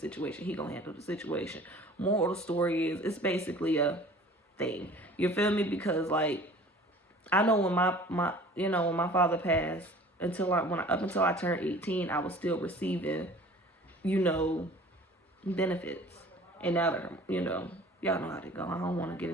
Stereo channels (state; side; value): normal; both; correlation 0.47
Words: He gonna handle the situation. Moral of the story is, it's basically a thing. You feel me? Because, like, I know when my you know, when my father passed, up until I turned 18, I was still receiving, you know, benefits. And now that, you know, y'all know how to go. I don't want to get